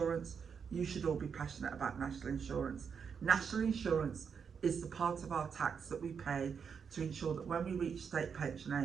You should all be passionate about national insurance. National insurance is the part of our tax that we pay to ensure that when we reach state pension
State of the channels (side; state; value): left; quieter; 6.5 dB